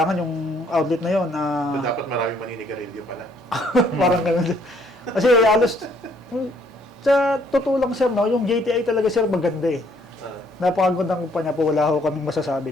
yung outlet na yon So, dapat maraming maninigarilyo pala. parang ganun. Kasi halos sa totoo lang sir, no, yung JTI talaga sir maganda eh. Napakagandang kumpanya po, wala ho kaming masasabi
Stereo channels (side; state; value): both; normal; correlation 0.65